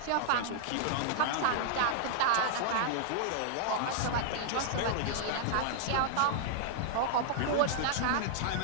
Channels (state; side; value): different; both; correlation -0.01